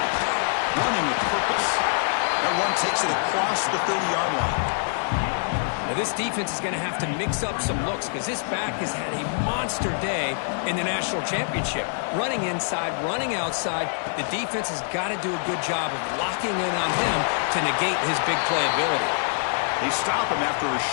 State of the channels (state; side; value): silent; right; digital silence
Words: Running with purpose. That one takes it across the 30-yard line. Now, this defense is going to have to mix up some looks because this back has had a monster day in the national championship. Running inside, running outside. The defense has got to do a good job of locking in on him to negate his big play ability. They stop him after a